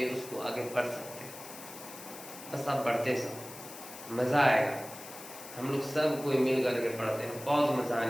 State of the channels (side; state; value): left; noise; hiss, 14 dB below the sound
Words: उसको आगे बढ़ सकते हैं। बस आप बढ़ते सब, मज़ा आएगा। हम लोग सब कोई मिल करके पढ़ते हैं, बहुत मज़ा